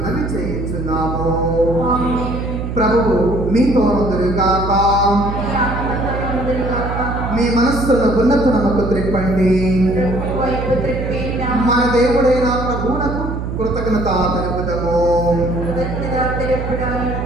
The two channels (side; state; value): right; noise; hum, 5 dB below the sound